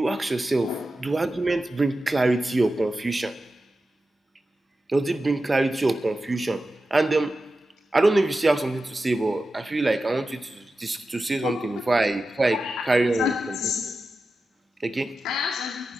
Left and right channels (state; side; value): normal; both; correlation 0.92